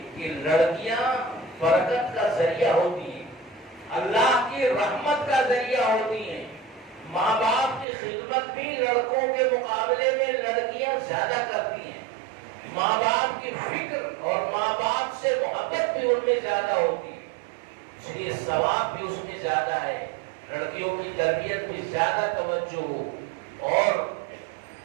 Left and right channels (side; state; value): left; drops out; at 7.9 s